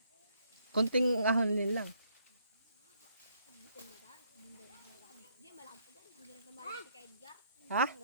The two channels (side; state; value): both; inverted; correlation -0.70